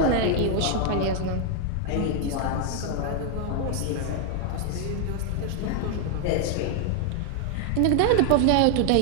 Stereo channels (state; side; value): different; both; correlation 0.00